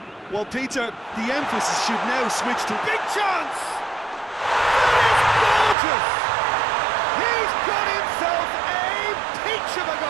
Well, Peter, the emphasis should now switch to... Big chance! That is gorgeous! He's got himself a peach of a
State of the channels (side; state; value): left; drops out; at 5.8 s